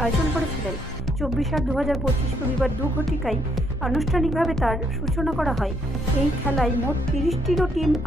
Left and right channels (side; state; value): both; normal; correlation 0.72